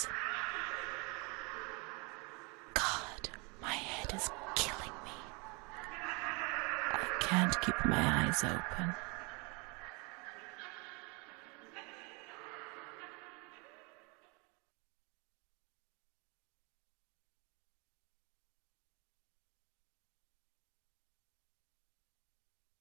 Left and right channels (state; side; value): quieter; left; 30.7 dB